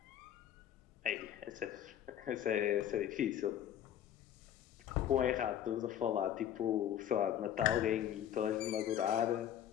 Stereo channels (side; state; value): right; quieter; 10.6 dB